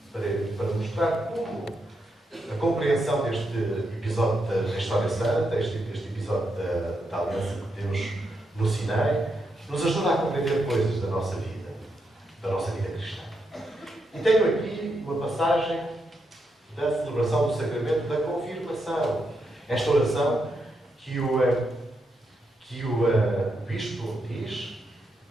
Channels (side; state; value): both; normal; correlation 0.82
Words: mostrar como a compreensão deste episódio da História Santa, este episódio da aliança de Deus no Sinai, nos ajuda a compreender coisas da nossa vida cristã. E tenho aqui uma passagem da celebração do sacramento da confirmação. Esta oração que o bispo diz